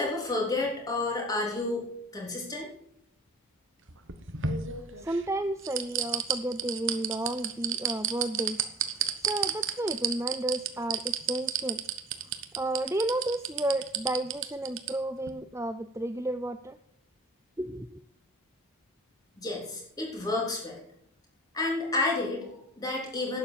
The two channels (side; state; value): both; normal; correlation 0.43